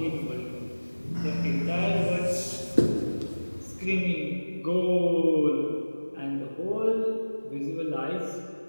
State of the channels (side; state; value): both; inverted; correlation -1.00